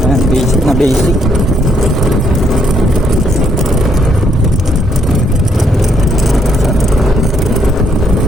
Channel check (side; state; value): both; normal; correlation 0.72